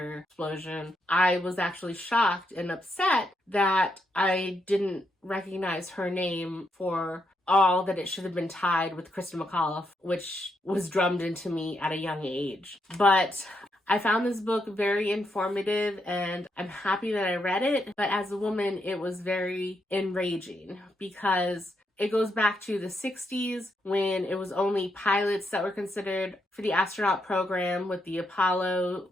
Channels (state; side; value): normal; both; correlation 0.80